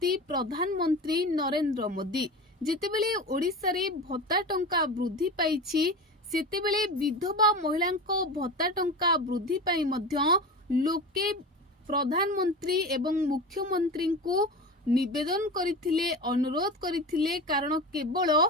प्रधानमंत्री नरेंद्र मोदी जेतेबेले ओडिशा रे भत्ता टंका वृद्धि पाइछि सेतेबेले विधवा महिला भत्ता टंका वृद्धि पाई मध्य लोके प्रधानमंत्री एवं मुख्यमंत्री को निवेदन करथिले अनुरोध करथिले कारण केवल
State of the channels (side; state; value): both; normal; correlation 0.29